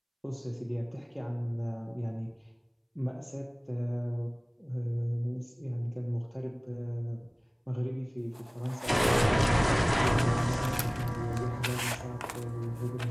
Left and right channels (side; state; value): both; identical; correlation 1.00